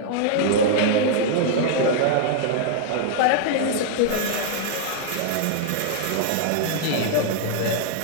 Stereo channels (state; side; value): different; both; correlation 0.00